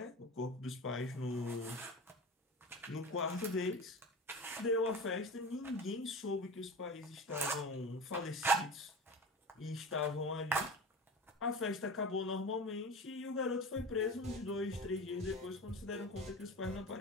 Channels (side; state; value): both; normal; correlation 0.31